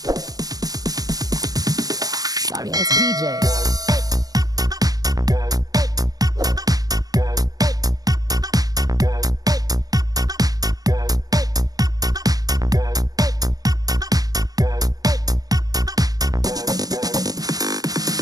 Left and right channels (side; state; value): left; late; 0.18 ms